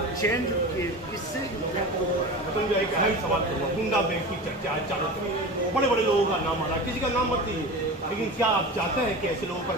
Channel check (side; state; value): both; normal; correlation 0.31